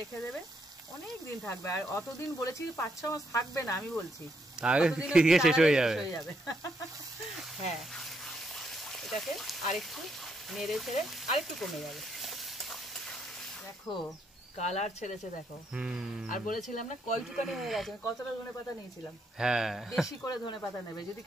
দেবে, অনেক দিন থাকবে। আর অতদিন বলেছি 5-6 মাস থাকবে না, আমি বলছি শেষ হয়ে যাবে। হ্যাঁ এটাকে আরেকটু নেড়ে ছেড়ে আরেকটু কমে যাবে। দেখো কালার ছেড়েছে, দেখো। আর বলেছিলাম না কয়টুকানি হয়ে গেছে, কতটা ধনেপাতা নিয়েছিলাম। হ্যাঁ বেশি করে ধনেপাতা নেবে, যদি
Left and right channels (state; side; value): normal; both; correlation 0.76